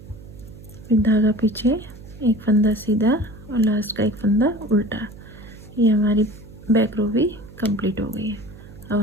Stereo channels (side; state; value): right; noise; hum, 18 dB below the sound